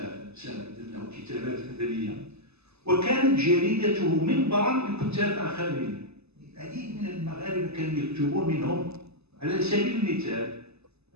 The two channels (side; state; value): left; late; 0.79 ms